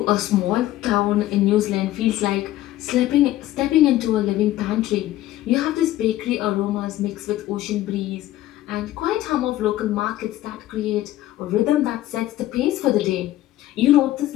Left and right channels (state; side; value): quieter; right; 14.7 dB